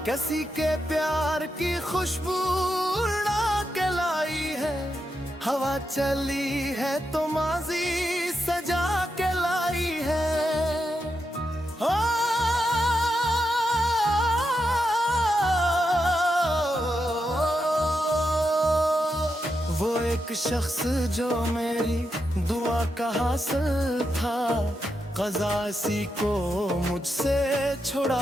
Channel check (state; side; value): normal; both; correlation 0.85